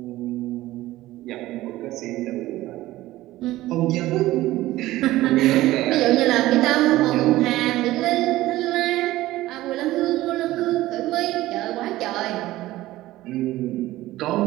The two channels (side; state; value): left; quieter; 16.5 dB